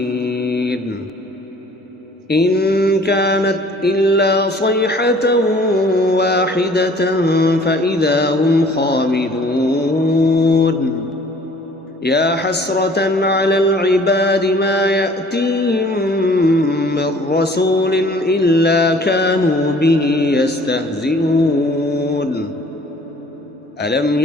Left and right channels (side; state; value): both; normal; correlation 0.53